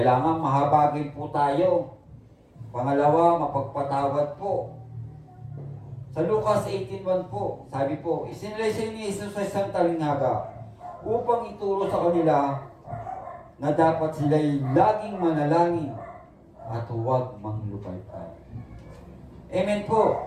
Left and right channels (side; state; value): both; identical; correlation 1.00